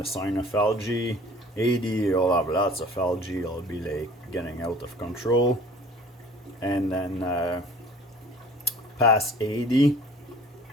sign of algae. 80, you'll have lots of algae, it'll be like getting out of control. And then past 80,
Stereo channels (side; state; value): both; normal; correlation 0.48